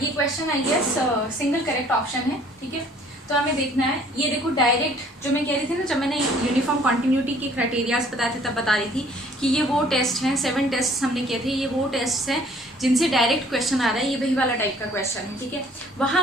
question I guess single correct option है। ठीक है, तो हमें देखना है, ये देखो डायरेक्ट जो मैं कह रही थी ना, जब मैंने यूनिफॉर्म कॉन्टिन्यूटी के क्राइटेरियाज बताए थे तब बता रही थी कि ये वो टेस्ट हैं, 7 टेस्ट हमने किए थे, ये वो टेस्ट हैं जिनसे डायरेक्ट क्वेश्चन आ रहा है, ये वही वाला टाइप का क्वेश्चन है। ठीक है, वहाँ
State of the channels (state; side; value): normal; both; correlation 0.57